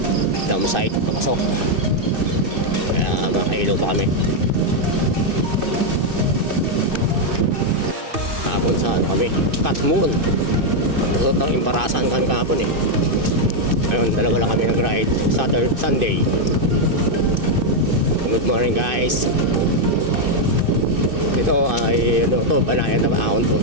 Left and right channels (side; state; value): left; late; 2.5 ms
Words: dam site. Papasok. Kaya makailaw pa kami. Kahapon sa ano kami? Cut Moon. Lusot ng imbarasan kami kahapon eh. Ngayon, dalawa lang kami nag-ride. Saturday, Sunday. Good morning guys. Ito ay ano to, banayan na ahon to.